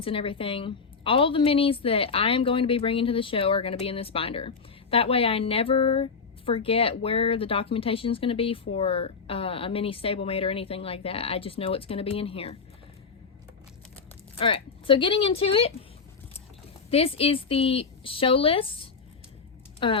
and everything. All the minis that I am going to be bringing to the show are going to be in this binder. That way I never forget where the documentation is going to be for a mini stablemate or anything like that. I just know it's going to be in here. Alright, so getting into it. This is the show list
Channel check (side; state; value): right; quieter; 5.2 dB